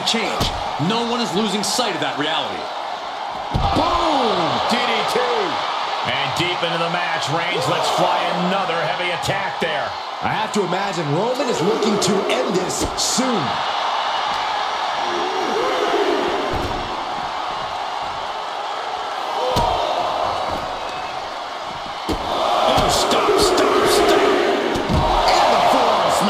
change. No one is losing sight of that reality. Boom! DDT. And deep into the match, Reigns lets fly another heavy attack there. I have to imagine Roman is looking to end this soon.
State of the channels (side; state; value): both; identical; correlation 1.00